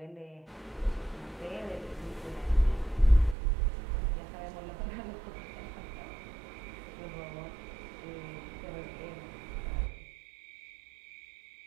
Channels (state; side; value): drops out; left; at 3.4 s